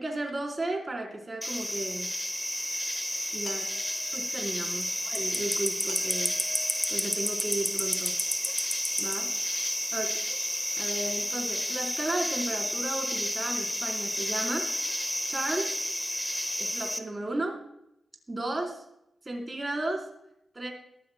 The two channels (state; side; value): normal; both; correlation 0.97